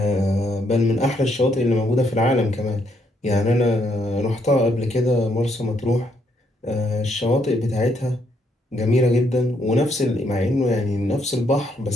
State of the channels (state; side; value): normal; both; correlation 0.73